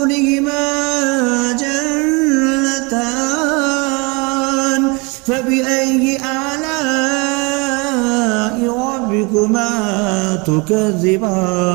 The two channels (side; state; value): left; quieter; 29.0 dB